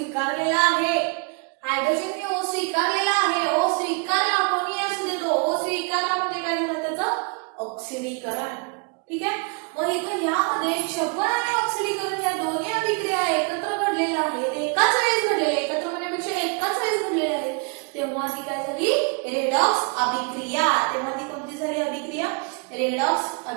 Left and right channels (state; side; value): quieter; left; 34.3 dB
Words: आहे. हायड्रोजनने O स्वीकारलेला आहे O स्वीकारला कोणी असू दे तो O स्वीकारला म्हणजे काय झालं त्याचं ऑक्सिडीकरण. ठीक आहे. मग इथं यामध्ये क्षपन आणि ऑक्सिडीकरण या दोन्ही अभिक्रिया एकत्र घडलेल्या आहेत, एकाच वेळेस घडलेल्या, एकत्र म्हणण्यापेक्षा एकाच वेळेस घडलेल्या आहेत. तेव्हा ती काय झाली? रेडॉक्स अभिक्रिया. तेव्हा ती कोणती झाली अभिक्रिया? रेडॉक्स